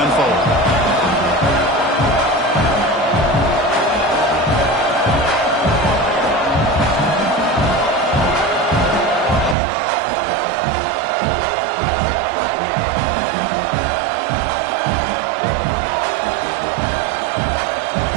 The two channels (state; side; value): drops out; left; at 9.6 s